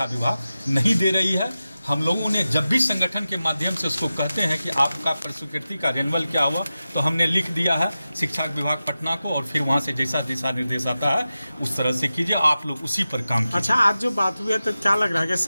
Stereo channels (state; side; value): inverted; both; correlation -0.94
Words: विभाग नहीं दे रही है। हम लोगों ने जब भी संगठन के माध्यम से उसको कहते हैं कि आपका प्रस्वीकृति का रेन्यूअल क्या हुआ, तो हमने लिख दिया है शिक्षा विभाग पटना को, और फिर वहाँ से जैसा दिशा निर्देश आता है उस तरह से कीजिए, आप लोग उसी पर काम कीजिए। अच्छा, आज जो बात हुई है तो क्या लग रहा है कि